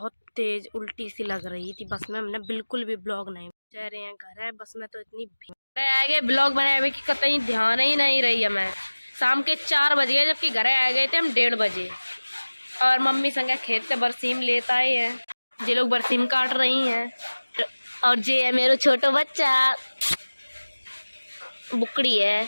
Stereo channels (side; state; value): both; inverted; correlation -1.00